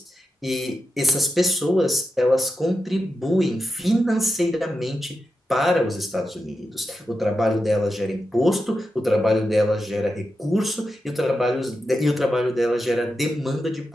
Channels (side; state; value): both; normal; correlation 0.89